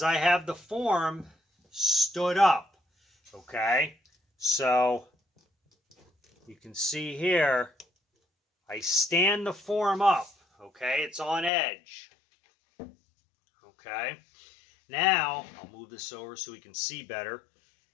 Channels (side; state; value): right; drops out; at 11.5 s